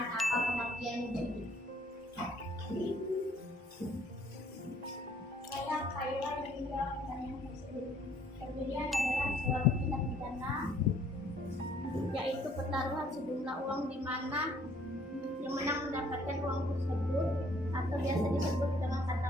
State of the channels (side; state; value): both; normal; correlation 0.61